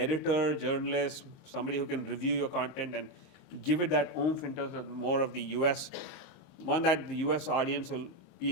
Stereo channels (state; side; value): late; right; 23 ms